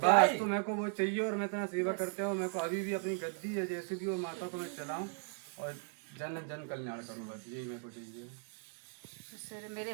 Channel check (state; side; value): silent; left; 53 dB below the other